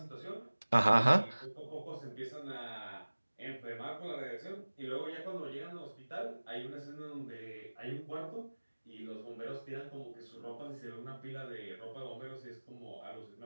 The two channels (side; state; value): both; inverted; correlation -1.00